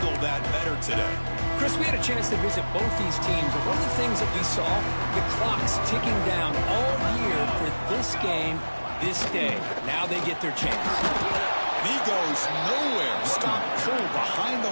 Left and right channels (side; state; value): both; inverted; correlation -1.00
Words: that better today? Chris, we had a chance to visit both these teams, and one of the things that we saw, the clock's ticking down all year for this game, this day. Now they get their chance. And he goes nowhere. Stop cold behind the